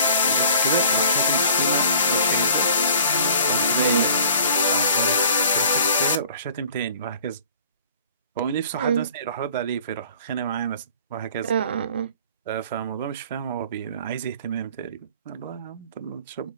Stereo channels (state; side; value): inverted; both; correlation -0.49